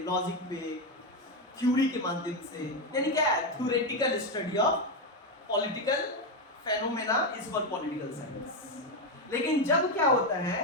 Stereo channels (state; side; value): normal; both; correlation 0.09